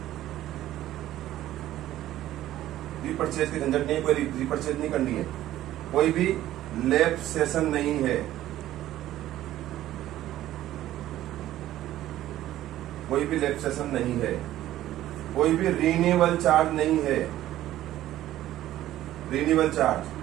रीपरचेज की झंझट नहीं है, कोई रीपरचेज नहीं करनी है, कोई भी लैब सेशन नहीं है, कोई भी लैब सेशन नहीं है, कोई भी रिन्यूअल चार्ज नहीं है, रिन्यूअल चार्ज,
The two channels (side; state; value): left; quieter; 13.8 dB